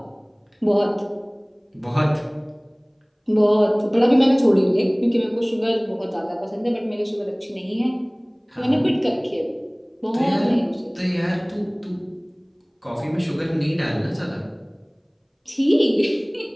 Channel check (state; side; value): identical; both; correlation 1.00